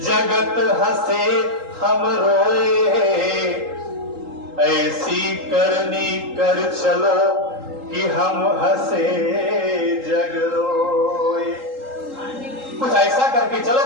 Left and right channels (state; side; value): late; left; 3.8 ms